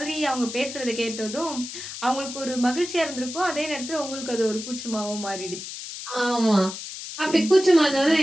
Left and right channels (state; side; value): noise; left; hiss, 9 dB below the sound